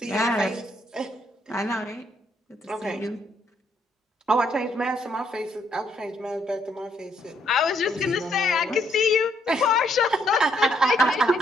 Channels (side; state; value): both; normal; correlation 0.71